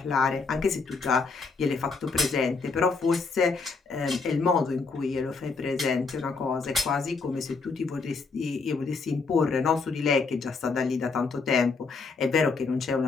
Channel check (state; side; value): quieter; right; 4.4 dB